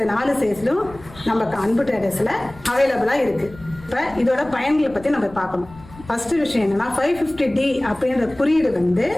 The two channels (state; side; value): noise; left; rumble, 20 dB below the sound